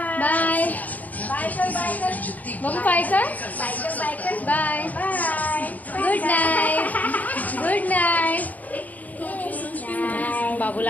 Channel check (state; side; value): late; right; 0.076 ms